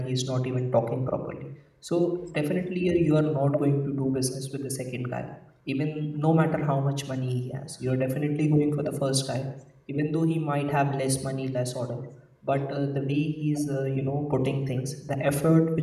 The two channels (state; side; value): identical; both; correlation 1.00